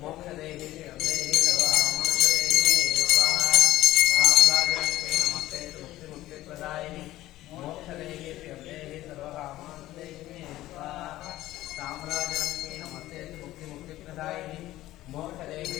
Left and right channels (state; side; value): quieter; right; 15.7 dB